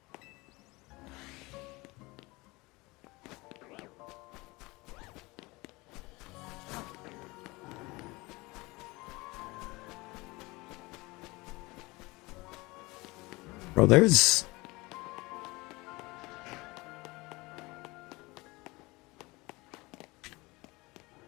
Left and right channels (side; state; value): right; quieter; 23.2 dB